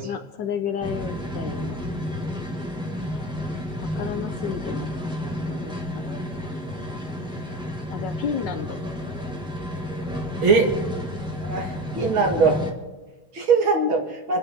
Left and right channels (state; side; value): normal; both; correlation 0.26